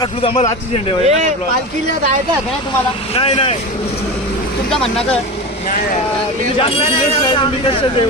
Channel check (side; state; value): both; normal; correlation 0.25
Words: आम्हाला आजची झेंडे पालखीला जायचं आहे का तुम्हाला नाही नाही तुमचं म्हणणं काय